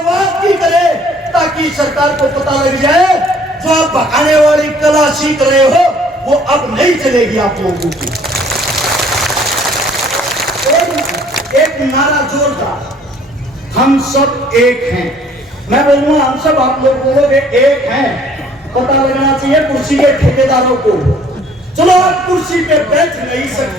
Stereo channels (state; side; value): normal; both; correlation 0.57